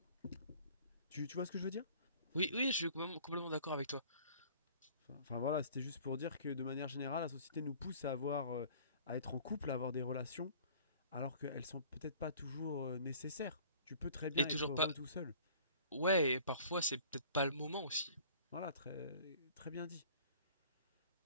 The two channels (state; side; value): inverted; both; correlation -0.50